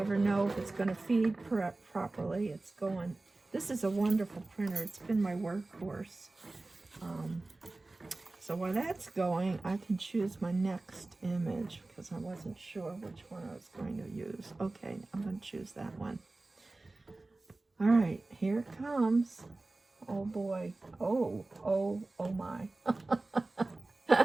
know if it's going to feed properly. It's going. This is a wonderful printer. It's been my workhorse. So while that's going, I can choose my next image, because I wasn't sure which one I was going to use. Okay, I'm going to choose that one. All right, here it comes. Oh boy. Oh my.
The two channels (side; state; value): left; quieter; 3.1 dB